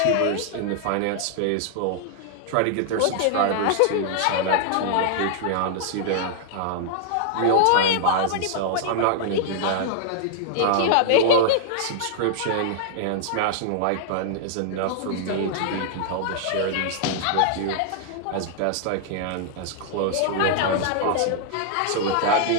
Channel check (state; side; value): different; both; correlation -0.01